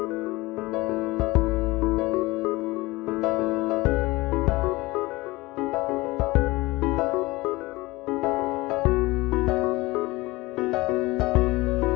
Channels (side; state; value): right; quieter; 21.2 dB